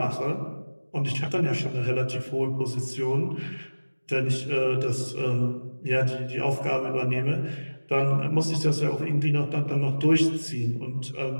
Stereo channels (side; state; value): both; inverted; correlation -1.00